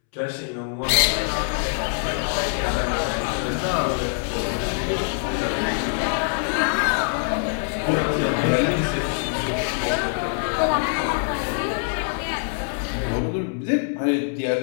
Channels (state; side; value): silent; right; 63 dB below the other